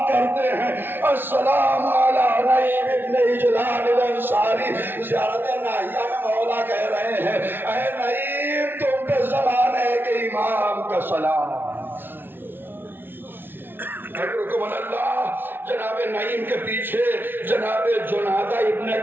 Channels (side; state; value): left; late; 0.10 ms